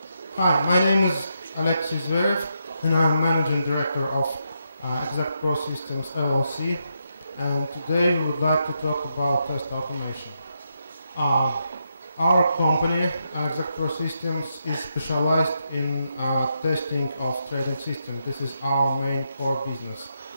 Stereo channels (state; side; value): inverted; both; correlation -0.81